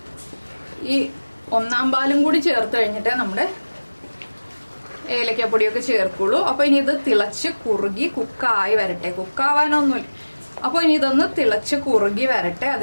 ഈ 1/4 പാലും കൂടി ചേർത്ത് കഴിഞ്ഞിട്ടേ നമ്മുടെ ഏലക്കപ്പൊടിയൊക്കെ ചേർക്കുള്ളൂ. അപ്പോൾ ഇനി ഇത് തിളച്ച് കുറുകി കുക്കായി വരട്ടെ. കുക്കാവാനൊന്നുമില്ല. അപ്പോൾ ഇനി ഇതൊന്ന് തിളച്ച് കുറുകി വരട്ടെ.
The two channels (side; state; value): both; inverted; correlation -1.00